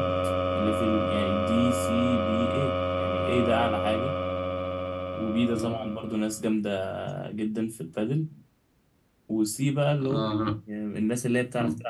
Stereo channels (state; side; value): identical; both; correlation 1.00